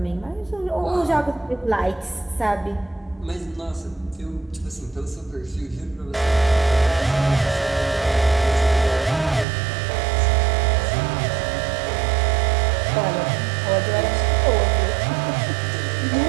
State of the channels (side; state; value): left; drops out; at 9.5 s